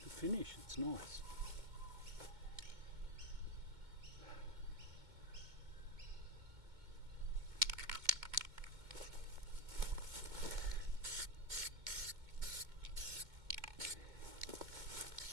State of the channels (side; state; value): left; late; 2.2 ms